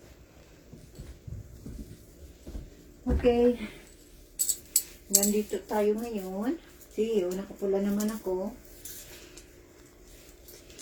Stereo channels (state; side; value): identical; both; correlation 1.00